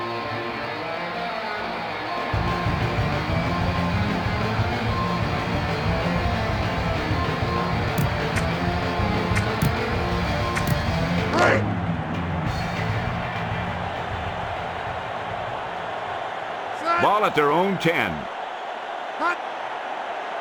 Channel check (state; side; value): identical; both; correlation 1.00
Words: Ball at their own 10. Hut!